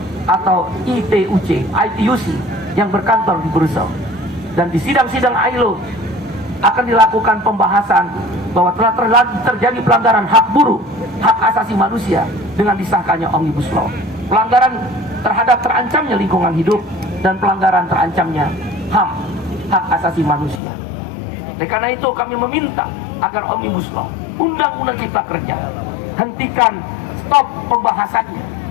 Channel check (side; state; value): right; drops out; at 20.6 s